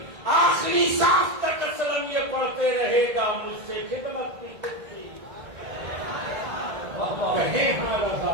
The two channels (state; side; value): late; left; 1.8 ms